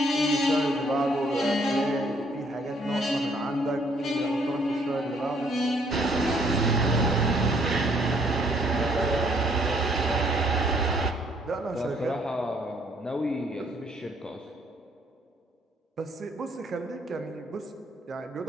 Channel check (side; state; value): both; normal; correlation 0.66